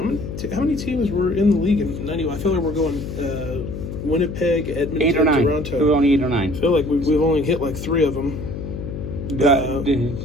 many teams were in the league in 90? I feel like we're going Winnipeg, Edmonton, 8 or 9. Toronto. There were only 8 or 9. I feel like we've only hit like 3 of them.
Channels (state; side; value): noise; left; hum, 7 dB below the sound